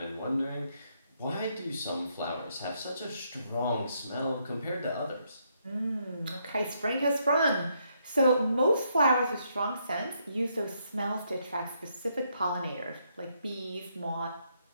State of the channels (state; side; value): inverted; both; correlation -0.75